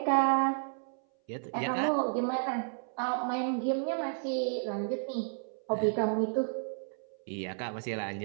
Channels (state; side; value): silent; left; 56 dB below the other